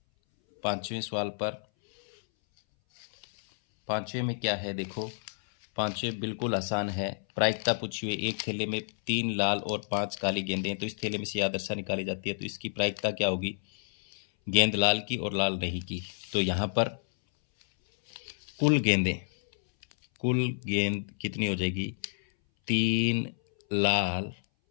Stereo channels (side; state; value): right; silent; 58 dB below the other